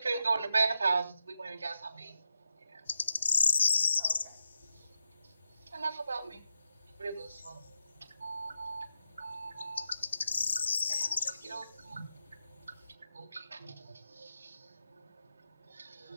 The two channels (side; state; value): both; inverted; correlation -0.87